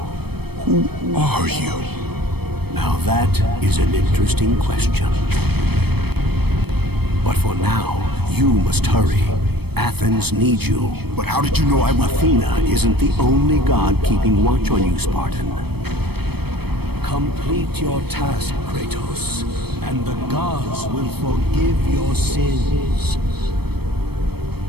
Who are you? Now that is an interesting question. But for now, you must hurry. Athens needs you. But how did you know I would? Athena isn't the only god keeping watch on you, Spartan. Complete your task, Kratos, and the gods will forgive your sins.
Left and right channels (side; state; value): left; late; 0.97 ms